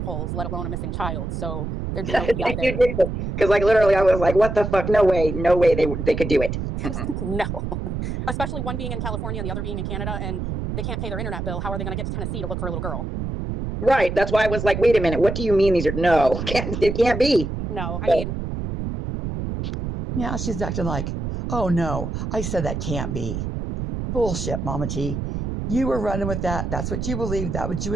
let alone a missing child. So there's no PI there. Because like literally I was like, what the fuck? No way they could do it. No, especially one being in California and the other being in Canada, and they can't pay their internet bill. How are they going to get to Tennessee to look for a little girl? Right. That's why I was like, wait a minute. What do you mean these are no? It can't be. No, I mean. Yeah, she's acting like, oh no, I said that can't be. Bullshit, Mama T. You were running with that. That's what you believed. That's what you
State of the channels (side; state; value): right; noise; rumble, 4 dB below the sound